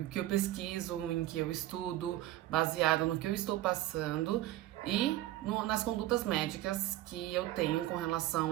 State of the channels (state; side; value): quieter; left; 15.1 dB